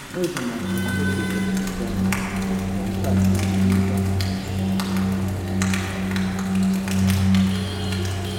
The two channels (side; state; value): both; identical; correlation 1.00